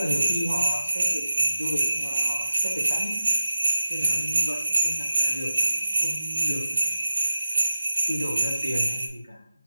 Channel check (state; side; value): inverted; both; correlation -0.94